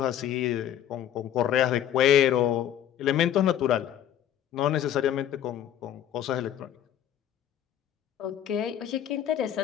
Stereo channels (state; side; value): quieter; right; 10.7 dB